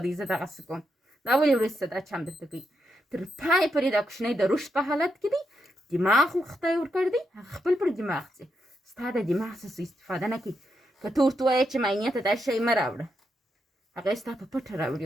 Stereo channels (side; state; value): both; normal; correlation 0.83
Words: دی، زه دغسې کوم. دا اولې ورځ څه دا چم درته کوي. تر پای پورې دا کوچنی د رشد په حالت کې دی، دماغ خدای ورکړی دی، هغه خپل پر دماغ ځي. ستا د دماغ څه استفاده نه کوي. که ته ورته ووایې چې معاینې ته دا شی مه راوړه، هغه یې ستا په پټه راوړي